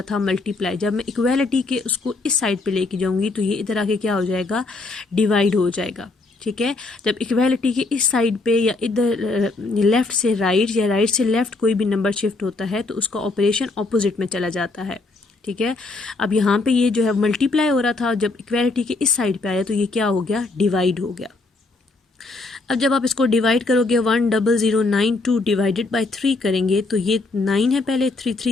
था, मल्टीप्लाई। जब मैं इक्वालिटी के उसको इस साइड पे लेके जाऊंगी तो ये इधर आके क्या हो जाएगा, डिवाइड हो जाएगा। ठीक है। जब इक्वालिटी के इस साइड पे या इधर लेफ्ट से राइट या राइट से लेफ्ट कोई भी नंबर शिफ्ट होता है तो उसका ऑपरेशन ऑपोजिट में चला जाता है। ठीक है। अब यहाँ पे ये जो है मल्टीप्लाई हो रहा था, जब इक्वालिटी के इस साइड पे आया तो ये क्या हो गया, डिवाइड हो गया। अब जब आप इसको डिवाइड करोगे 10092 डिवाइडेड बाय 3 करेंगे तो ये 9 है, पहले 3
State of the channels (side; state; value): right; quieter; 3.4 dB